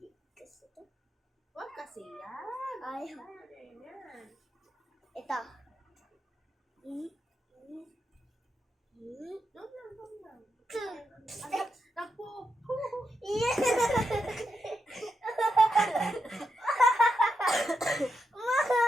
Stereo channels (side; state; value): both; normal; correlation 0.85